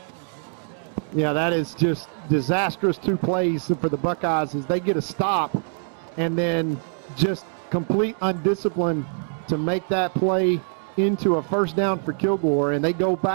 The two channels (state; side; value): silent; left; 63 dB below the other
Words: Yeah, that is just disastrous 2 plays for the Buckeyes as they get a stop and then just complete undiscipline to make that play into a first down for Kilgore, and they go